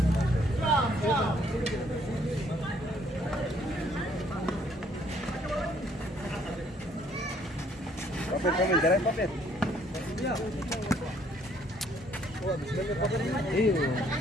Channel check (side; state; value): both; normal; correlation 0.65